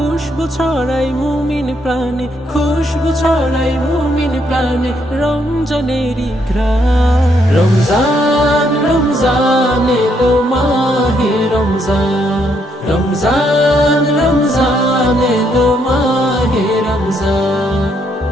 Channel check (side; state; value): both; normal; correlation 0.74